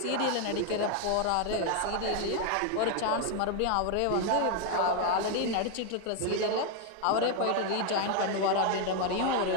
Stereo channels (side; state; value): both; different; correlation 0.00